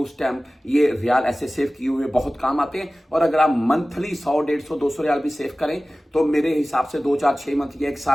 टाइम ये रियाल ऐसे सेव किए हुए बहुत काम आते हैं। और अगर आप मंथली 100, 150, 200 रियाल भी सेव करें तो मेरे हिसाब से 2, 4, 6 मंथ या 1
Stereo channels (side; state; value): both; normal; correlation 0.97